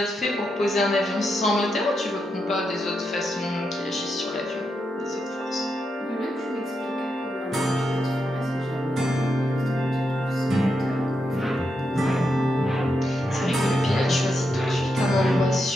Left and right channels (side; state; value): both; normal; correlation 0.84